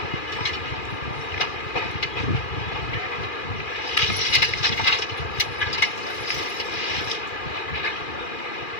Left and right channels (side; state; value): right; late; 2.4 ms